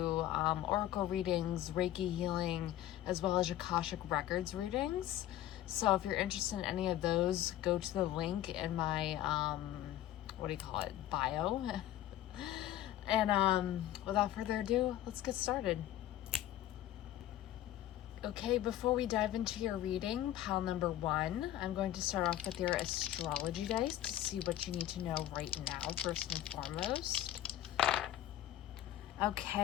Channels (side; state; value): right; quieter; 13.0 dB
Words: oracle readings, Reiki healing, as well as Akashic Records readings. So if you're interested in any of those, go to the link in my, bio. And without further ado, let's get started. Okay, before we dive into your reading, pile number 1, I'm going to start off with your astrology dice to see what you need to know right now, first and foremost.